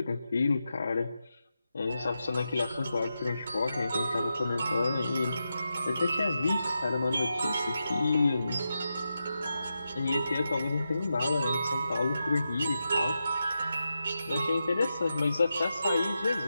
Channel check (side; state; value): both; inverted; correlation -0.88